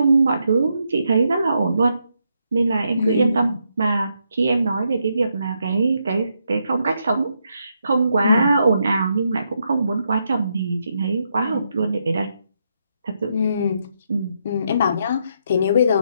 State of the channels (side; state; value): both; inverted; correlation -0.80